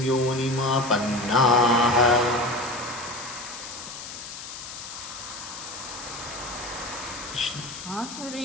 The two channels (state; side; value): noise; left; hiss, 11 dB below the sound